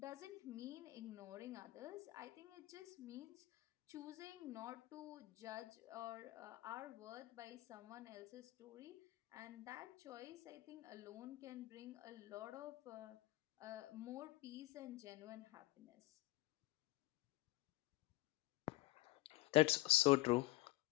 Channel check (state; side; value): quieter; right; 18.9 dB